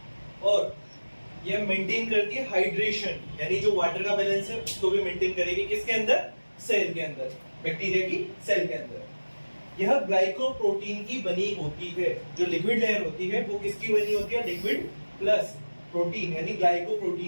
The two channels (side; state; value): both; inverted; correlation -1.00